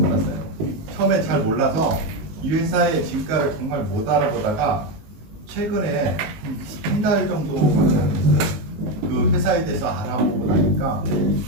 처음에 잘 몰라서 이 회사의 진가를 정말 못 알아보다가 최근에 한 달 정도밖에 안 됐어요. 그 회사에 대해서 알아보고 나니까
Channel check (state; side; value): late; left; 19 ms